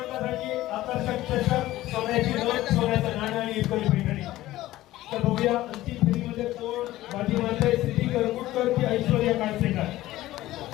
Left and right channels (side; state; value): right; quieter; 15.9 dB